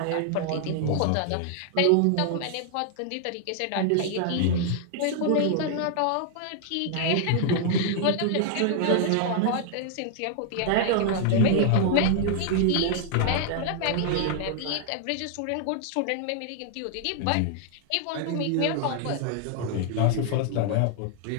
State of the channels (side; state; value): both; different; correlation 0.00